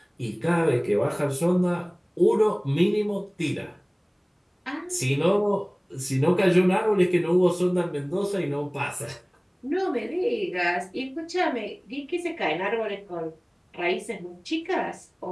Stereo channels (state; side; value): identical; both; correlation 1.00